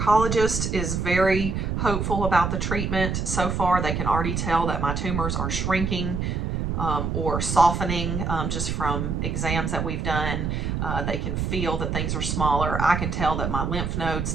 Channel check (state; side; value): noise; right; rumble, 1 dB below the sound